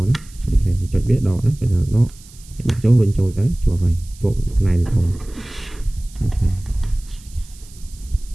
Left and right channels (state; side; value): noise; right; hiss, 23 dB below the sound